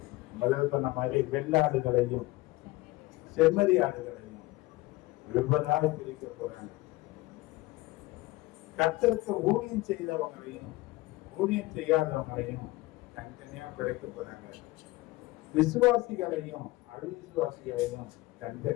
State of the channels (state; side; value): quieter; right; 19.8 dB